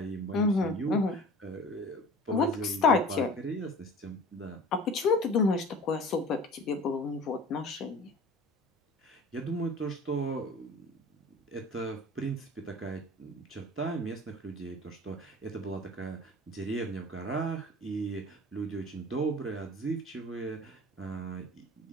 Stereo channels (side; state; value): both; normal; correlation 0.41